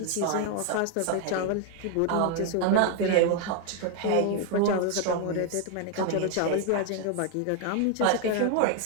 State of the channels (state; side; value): different; both; correlation 0.00